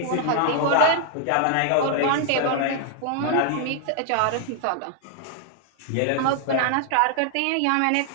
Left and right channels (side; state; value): both; different; correlation 0.00